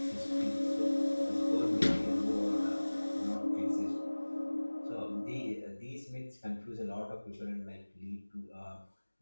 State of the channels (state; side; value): inverted; both; correlation -1.00